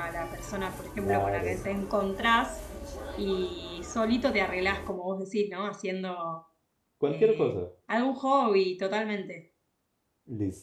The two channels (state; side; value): identical; both; correlation 1.00